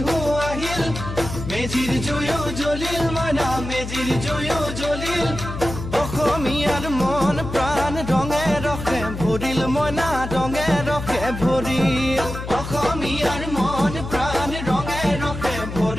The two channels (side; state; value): left; noise; hum, 7 dB below the sound